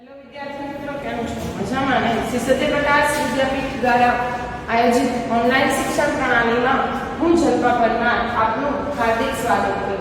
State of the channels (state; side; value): identical; both; correlation 1.00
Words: વિદ્યાર્થી મિત્રો, કેમ છો? મજામાં ને? શ્રી સત્યપ્રકાશ વિદ્યાપીઠ દ્વારા આયોજિત ઓનલાઈન શિક્ષણ પ્રણાલીમાં હું જલ્પા પરમાર આપનું હાર્દિક સ્વાગત